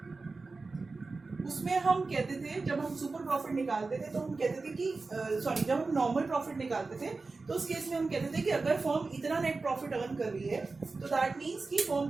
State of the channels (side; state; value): left; quieter; 3.9 dB